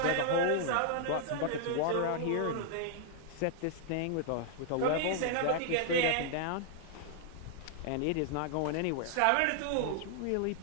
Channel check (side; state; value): both; different; correlation -0.01